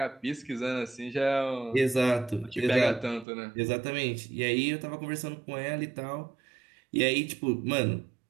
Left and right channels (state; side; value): drops out; left; at 3.2 s